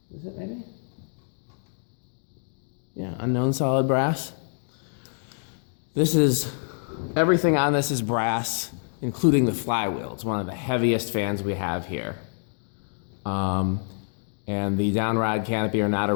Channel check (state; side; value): silent; right; digital silence